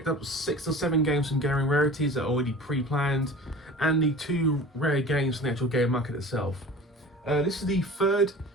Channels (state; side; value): normal; both; correlation 0.39